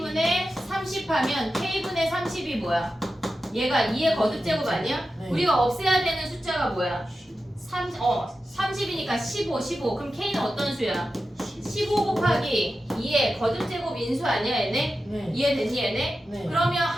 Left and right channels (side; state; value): both; normal; correlation 0.92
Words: 30 하면 K분의 30이 뭐야? 얘가 2의 거듭제곱 아니야? 네. 우리가 없애야 되는 숫자가 뭐야? 30이니까 15. 그럼 K는 어떤 수야? 15 곱하기 2의 거듭제곱 인수 아니야 얘네? 네. 이해됐니 얘네? 네. 그러면